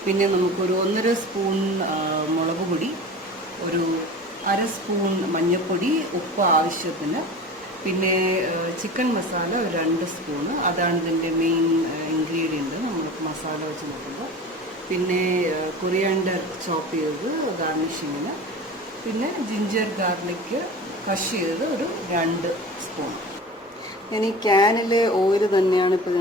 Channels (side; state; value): both; normal; correlation 0.35